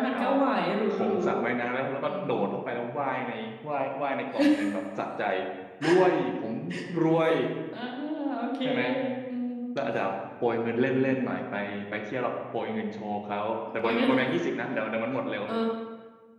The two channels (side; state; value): both; identical; correlation 1.00